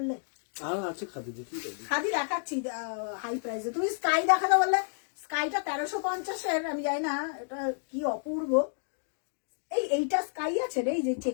আর আছে খাদি, দেখি খাদি দেখাচ্ছি হাই প্রাইসে। তুমি স্কাই দেখাতে বললে, স্কাইটা 1350-এর, আমি জানি না এটা কি অপূর্ব। এইটা স্কাই আছে রে, এই যে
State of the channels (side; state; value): right; silent; digital silence